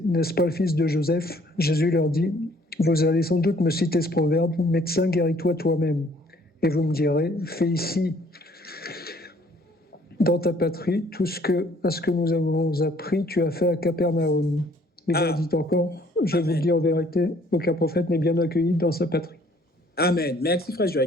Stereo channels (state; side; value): normal; both; correlation 0.60